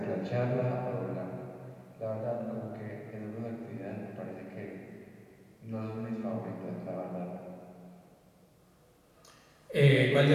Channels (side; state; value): both; identical; correlation 1.00